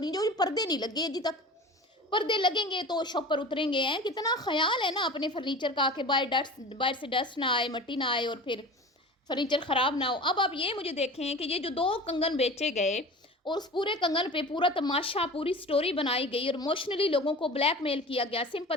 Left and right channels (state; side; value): normal; both; correlation 0.36